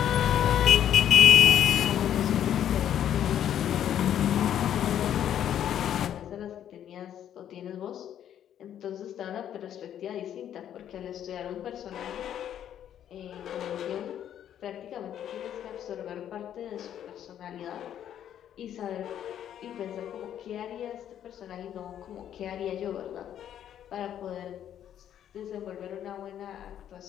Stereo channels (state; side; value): quieter; right; 10.3 dB